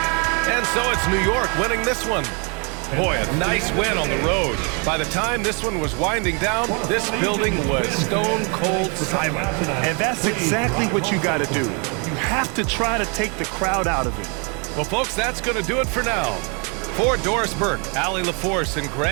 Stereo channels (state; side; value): quieter; left; 34.7 dB